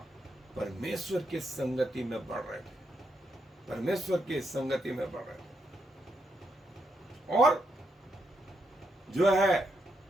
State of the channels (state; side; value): normal; both; correlation 0.80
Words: परमेश्वर की संगति में बढ़ रहे थे, और जो है